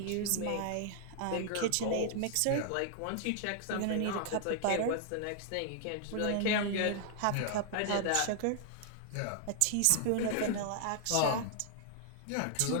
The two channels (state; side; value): different; both; correlation 0.00